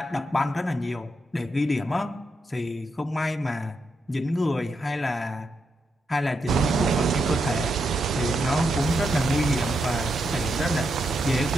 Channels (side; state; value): both; normal; correlation 0.82